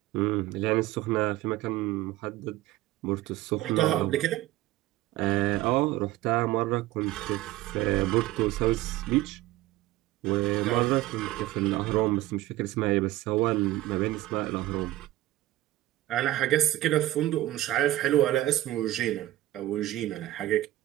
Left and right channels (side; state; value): left; quieter; 16.0 dB